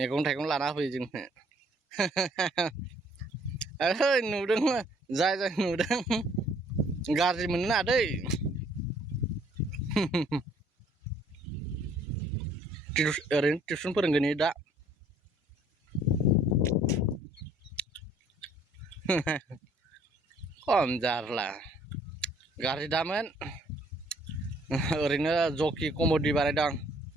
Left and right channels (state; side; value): normal; both; correlation 0.61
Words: थाइगं लाना होफैयो जोंनो। ओइ नुदों, जाय नुदों गाज्रि मोननो नाङा दै। ओरैनो टिउसन फोरोंगोन दा। खम जारला, गाज्रि दामोन। ओरैनो जकि कमेडि बानायदों,